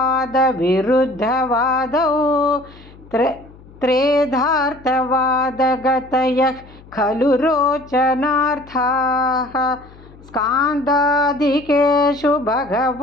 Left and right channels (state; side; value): noise; left; hum, 23 dB below the sound